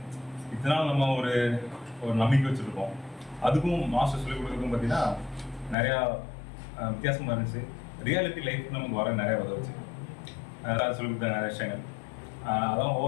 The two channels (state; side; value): drops out; right; at 5.8 s